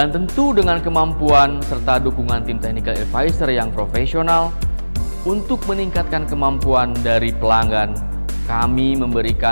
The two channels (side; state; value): both; inverted; correlation -1.00